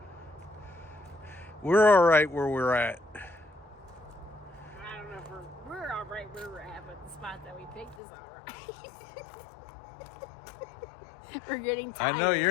We're all right where we're at. I don't know if we're all right where we're at, but the spot that we picked is all right. We're getting tired. I know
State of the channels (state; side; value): drops out; right; at 8.0 s